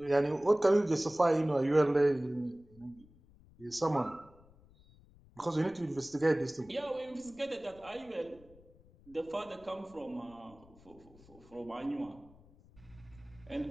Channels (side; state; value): left; noise; rumble, 26 dB below the sound